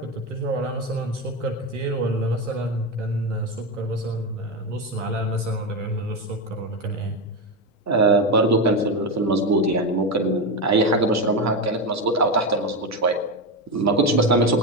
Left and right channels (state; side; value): normal; both; correlation 0.13